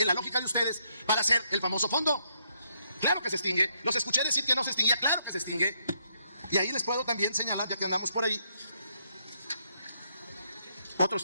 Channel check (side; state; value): both; inverted; correlation -0.74